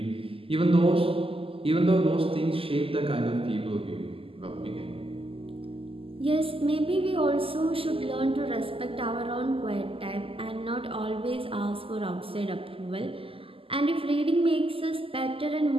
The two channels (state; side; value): late; left; 0.26 ms